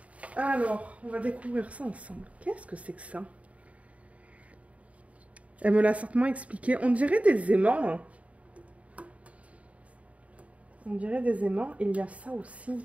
Alors, on va découvrir ça ensemble. Qu'est-ce que c'est que ça? Elle me l'a certainement expliqué. On dirait des aimants. Hein. On dirait des aimants. Et il y a ça aussi.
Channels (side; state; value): left; late; 0.066 ms